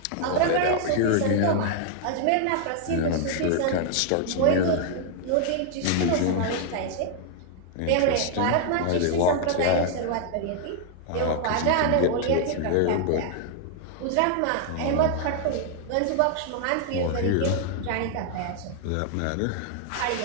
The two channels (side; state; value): both; different; correlation 0.00